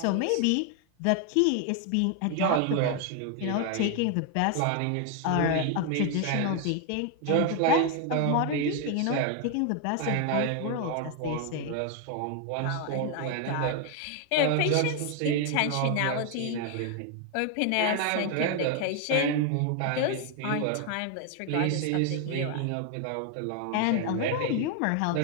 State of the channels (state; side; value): different; both; correlation 0.01